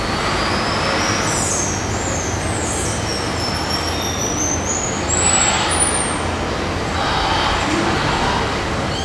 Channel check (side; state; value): both; identical; correlation 1.00